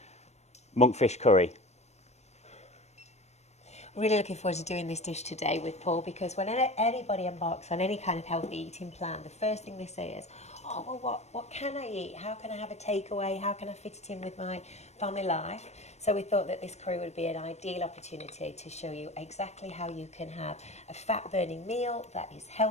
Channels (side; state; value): right; late; 0.32 ms